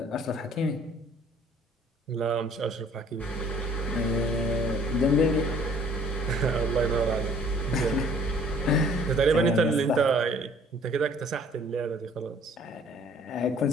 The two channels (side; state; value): both; normal; correlation 0.56